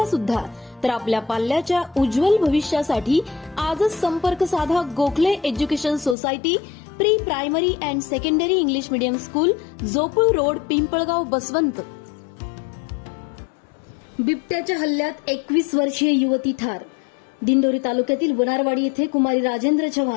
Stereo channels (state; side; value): drops out; right; at 6.2 s